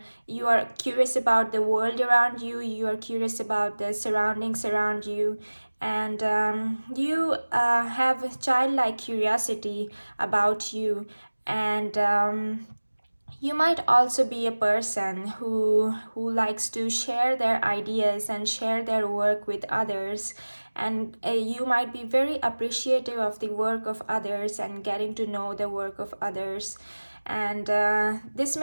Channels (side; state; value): both; inverted; correlation -1.00